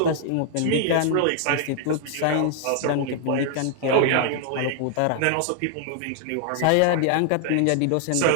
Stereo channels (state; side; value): different; both; correlation 0.00